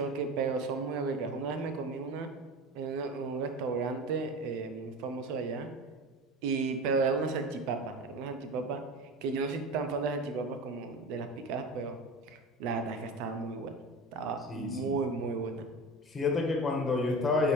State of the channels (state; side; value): normal; both; correlation 0.31